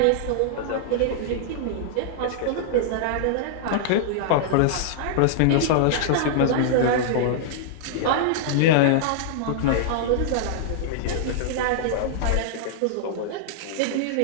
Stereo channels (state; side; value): different; both; correlation -0.01